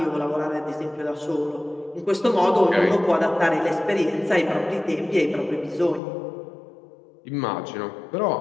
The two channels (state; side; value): drops out; right; at 6.0 s